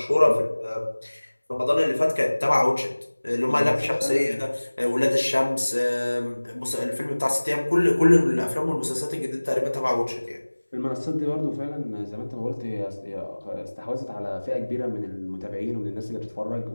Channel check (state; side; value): inverted; both; correlation -1.00